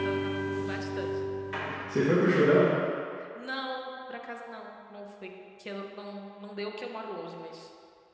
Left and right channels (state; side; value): identical; both; correlation 1.00